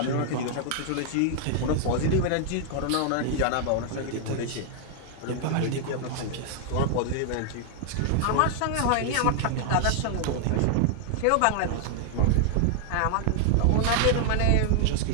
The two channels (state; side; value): different; both; correlation 0.00